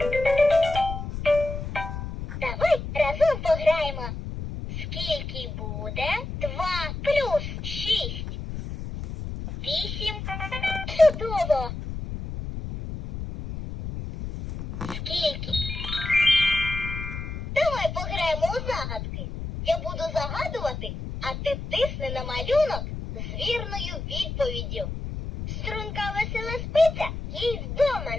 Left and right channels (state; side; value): noise; left; rumble, 7 dB below the sound